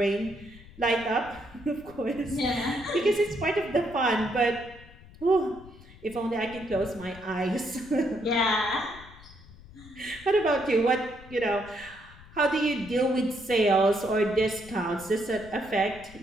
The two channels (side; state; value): left; noise; rumble, 20 dB below the sound